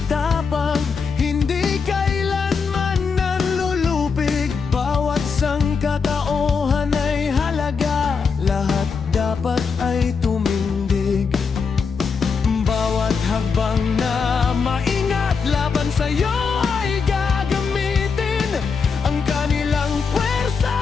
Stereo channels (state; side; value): quieter; right; 5.4 dB